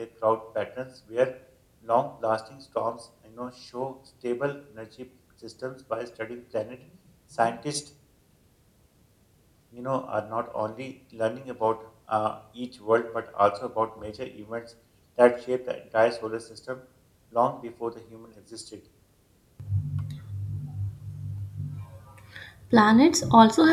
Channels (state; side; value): identical; both; correlation 1.00